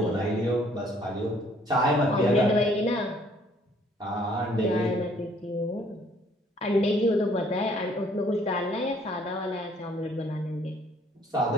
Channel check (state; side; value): normal; both; correlation 0.61